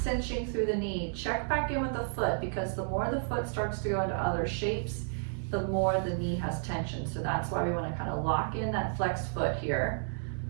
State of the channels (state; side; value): silent; left; digital silence